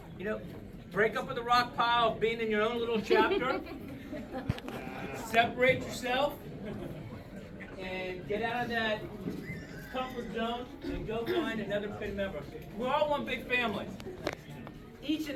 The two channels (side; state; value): both; identical; correlation 1.00